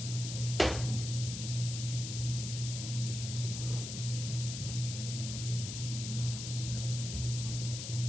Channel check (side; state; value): left; noise; hiss, 6 dB below the sound